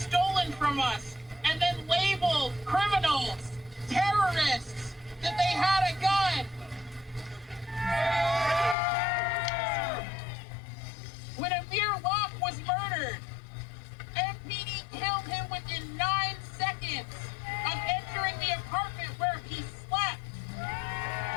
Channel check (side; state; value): right; drops out; at 8.8 s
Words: from us and then labeled criminals, terrorists, that they had a gun. When Amir Locke was murdered, MPD killed him within 9 seconds of entering the apartment where he slept.